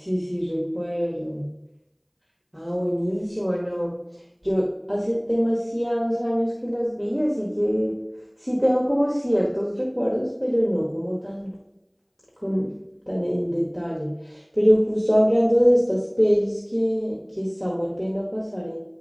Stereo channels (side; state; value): both; identical; correlation 1.00